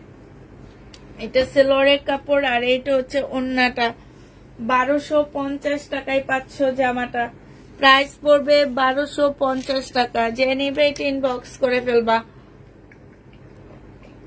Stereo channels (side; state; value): both; identical; correlation 1.00